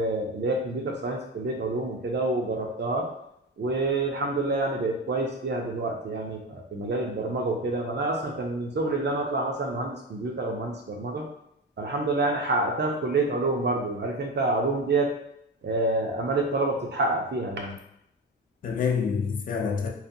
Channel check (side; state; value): both; normal; correlation 0.22